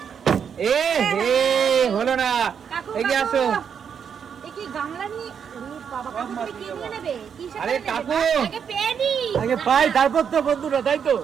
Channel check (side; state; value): left; quieter; 7.4 dB